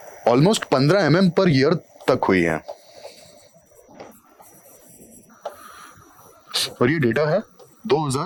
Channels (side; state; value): both; identical; correlation 1.00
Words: ऑलमोस्ट 15 mm पर ईयर तक हुई है। और ये डेटा है